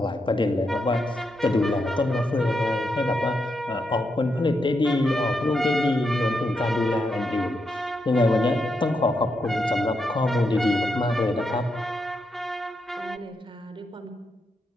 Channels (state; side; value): normal; both; correlation 0.83